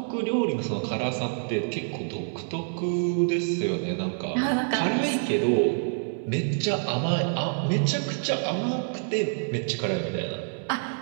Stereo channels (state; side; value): silent; left; digital silence